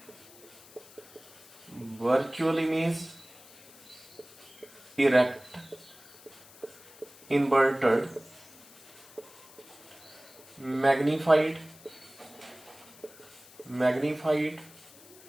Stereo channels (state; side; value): noise; left; hiss, 22 dB below the sound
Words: virtual image, erect, inverted, magnified